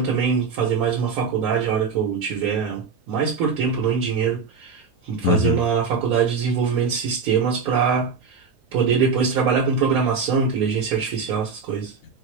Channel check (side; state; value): left; quieter; 5.2 dB